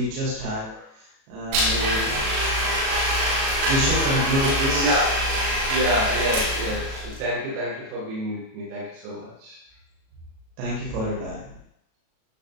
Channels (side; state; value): left; late; 37 ms